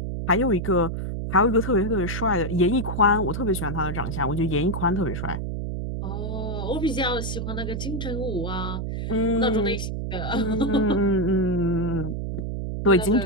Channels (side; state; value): right; noise; hum, 4 dB below the sound